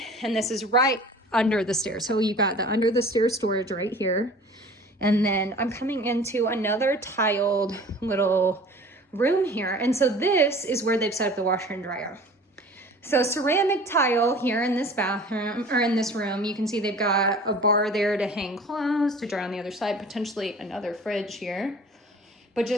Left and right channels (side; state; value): both; normal; correlation 0.45